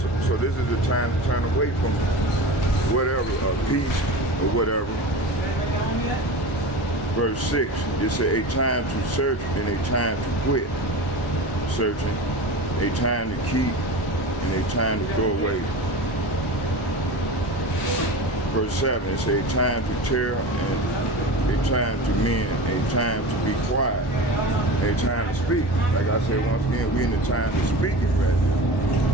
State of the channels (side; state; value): both; normal; correlation 0.30